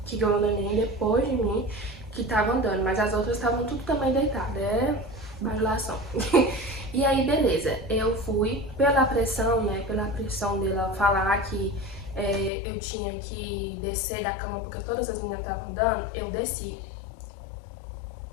que ganhou neném depois de mim que tava andando, mas as outras estavam tudo também deitadas, bajulação. E aí, beleza, eu fui pela pressão, né, pela pressão dela falar que eu tinha que descer da cama porque todas as meninas estavam andando, eu desci.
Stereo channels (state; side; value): drops out; right; at 12.5 s